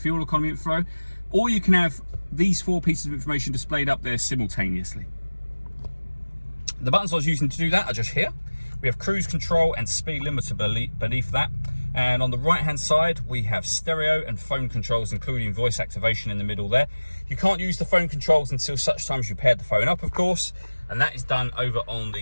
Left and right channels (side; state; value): both; inverted; correlation -1.00